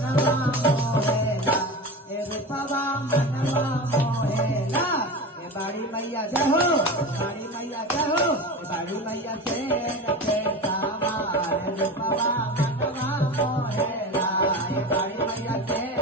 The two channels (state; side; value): normal; both; correlation 0.28